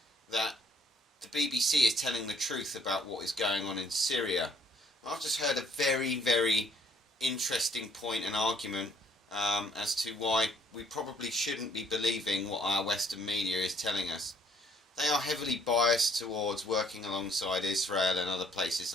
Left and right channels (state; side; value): normal; both; correlation 0.62